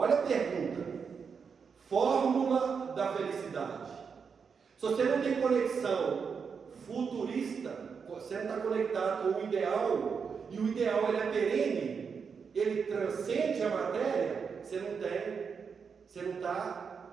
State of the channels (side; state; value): left; quieter; 6.0 dB